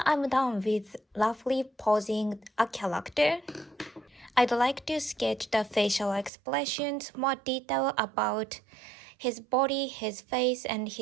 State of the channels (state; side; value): drops out; left; at 6.3 s